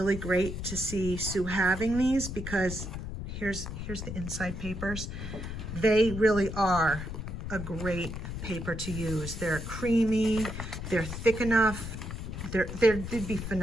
great to see Sue having these, because here's the inside papers. They really are a great paper to use. They're creamy, they're thick enough. They'd be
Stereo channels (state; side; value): noise; left; rumble, 7 dB below the sound